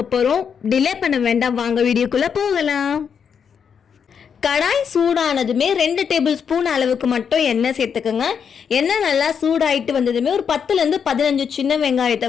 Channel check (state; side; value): quieter; right; 7.1 dB